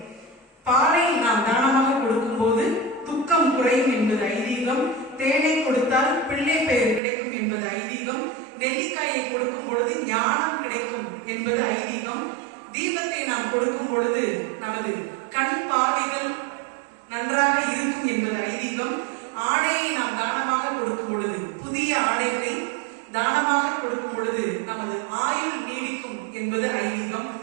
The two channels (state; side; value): drops out; left; at 7.0 s